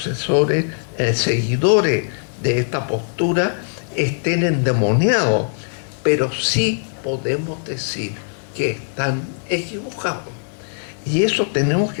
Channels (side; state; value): right; silent; digital silence